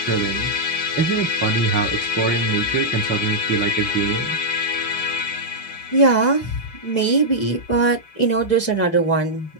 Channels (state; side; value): late; right; 4.8 ms